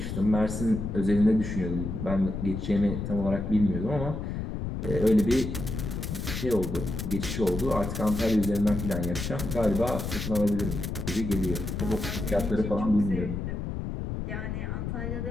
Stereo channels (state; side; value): noise; left; rumble, 4 dB below the sound